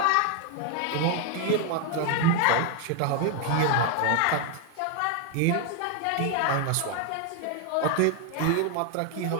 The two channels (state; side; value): different; both; correlation 0.01